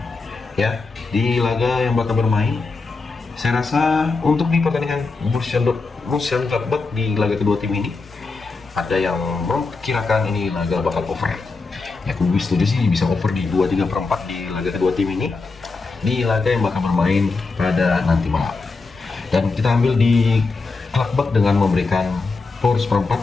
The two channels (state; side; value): quieter; right; 4.0 dB